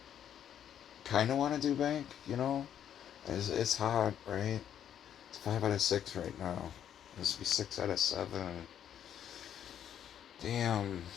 Kind of want to do bank, you know? It's hot, right? It's 5 out of 6 right now. This would be 6 out of 7. Damn.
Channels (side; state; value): right; quieter; 9.7 dB